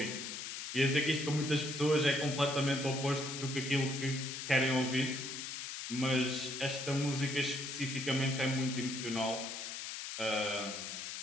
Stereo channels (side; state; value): left; noise; hiss, 6 dB below the sound